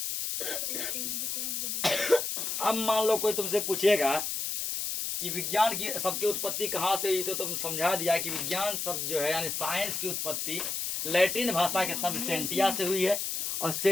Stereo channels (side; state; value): left; noise; hiss, 2 dB below the sound